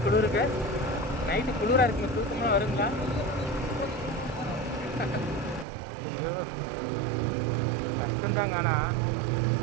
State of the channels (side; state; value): left; drops out; at 5.7 s